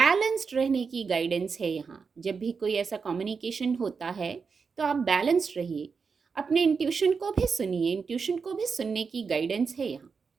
रहने की गाइडेंस है यहाँ। जब भी कोई ऐसा कम्युनिकेशन होता है तो आप बैलेंस्ड रहिए, अपने इंट्यूशन को भी सुनिए, इंट्यूशन को भी सुनने की गाइडेंस है यहाँ।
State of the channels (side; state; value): left; quieter; 5.4 dB